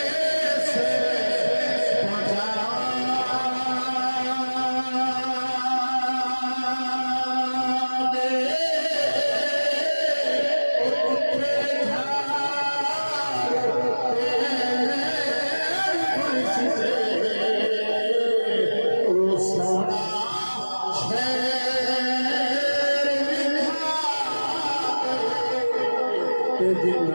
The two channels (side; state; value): both; inverted; correlation -1.00